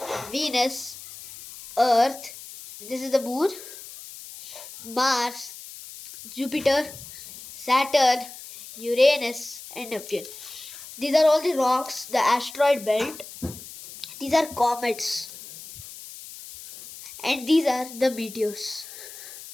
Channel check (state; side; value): noise; left; hiss, 15 dB below the sound